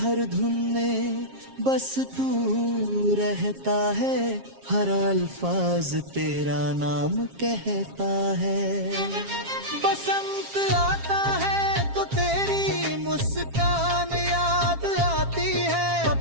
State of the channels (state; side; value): late; left; 7.4 ms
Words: धुन में बस तू रहता है, हर अल्फाज तेरा नाम कहता है। बसंत आता है तो तेरी मुस्कान याद आती है,